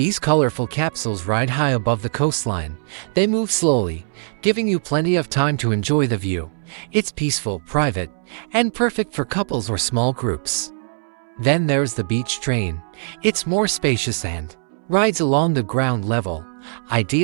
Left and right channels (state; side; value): silent; left; 65 dB below the other